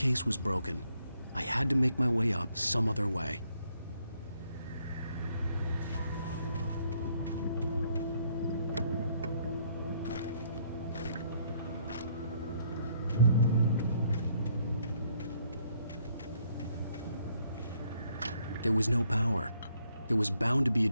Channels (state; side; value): inverted; both; correlation -0.70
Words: was broken. I had to make my way up some other way. There was no power. There was bound to be a